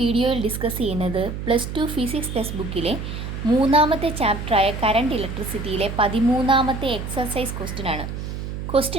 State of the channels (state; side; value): noise; right; hum, 6 dB below the sound